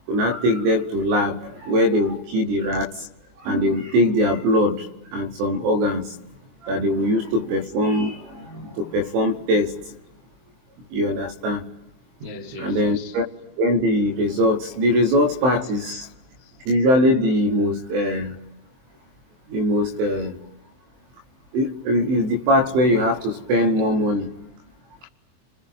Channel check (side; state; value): left; late; 23 ms